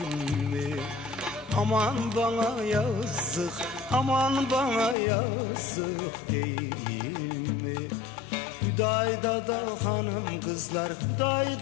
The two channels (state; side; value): drops out; right; at 5.0 s